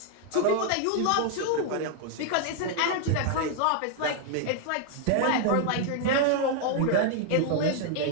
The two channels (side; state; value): both; different; correlation 0.00